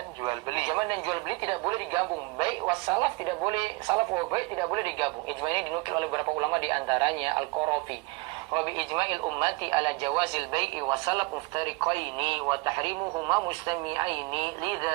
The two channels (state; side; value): quieter; left; 26.5 dB